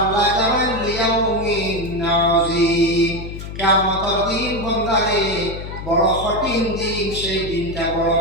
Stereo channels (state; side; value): noise; left; hum, 9 dB below the sound